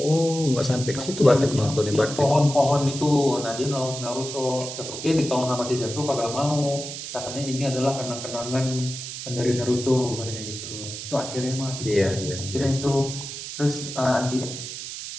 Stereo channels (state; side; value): noise; right; hiss, 8 dB below the sound